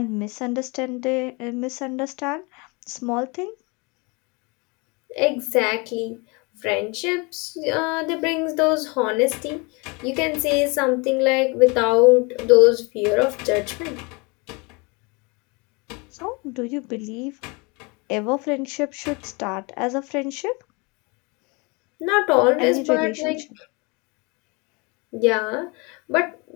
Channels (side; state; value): right; quieter; 28.8 dB